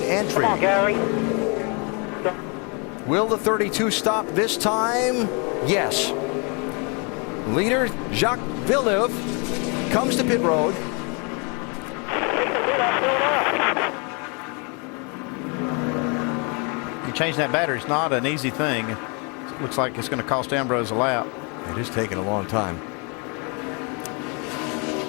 entry. Come on, Gary. Will the 32 stop this time? Yes. Leader Jacques Villeneuve comes to pit road. You change that battery, it's not an easy thing. It looks like it's going to cost Ambrose a lap. It is taking a long time.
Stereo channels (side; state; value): right; quieter; 33.7 dB